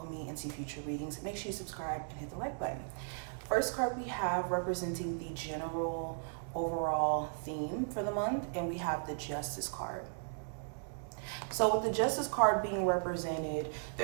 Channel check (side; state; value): left; silent; digital silence